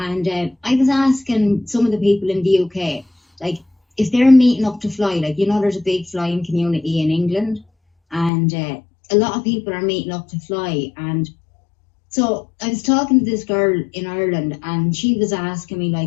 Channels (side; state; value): right; drops out; at 8.3 s